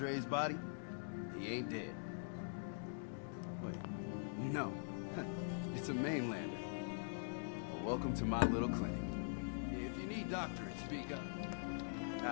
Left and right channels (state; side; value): silent; right; digital silence